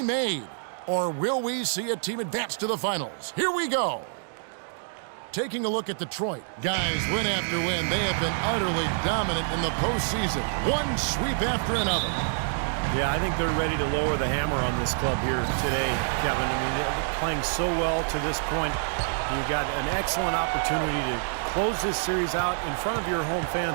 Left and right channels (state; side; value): silent; left; digital silence